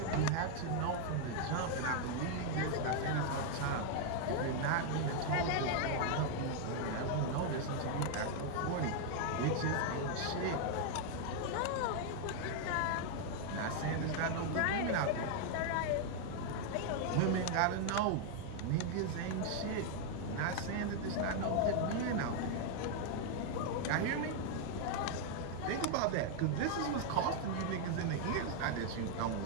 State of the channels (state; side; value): different; both; correlation 0.00